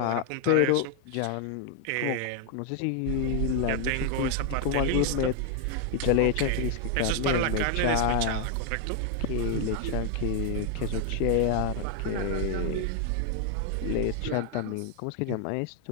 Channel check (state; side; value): different; both; correlation 0.00